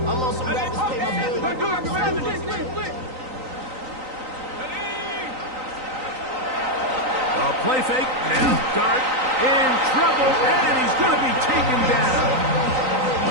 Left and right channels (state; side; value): late; left; 3.9 ms